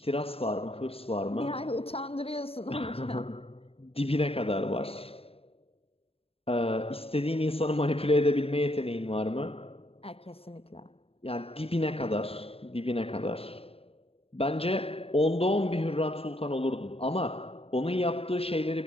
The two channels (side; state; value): right; late; 0.28 ms